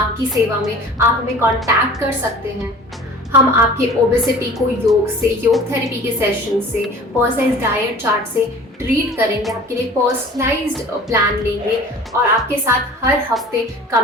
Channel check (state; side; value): normal; both; correlation 0.44